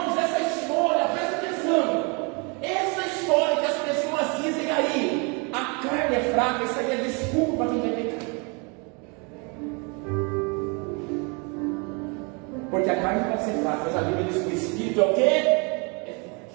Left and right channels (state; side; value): quieter; left; 32.4 dB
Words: essa história, presta atenção. Essa história que as pessoas dizem aí, a carne é fraca, isso aí é desculpa para quem vai pecar. Porque a carne pode ser fraca, mas a Bíblia diz que o Espírito é o quê? É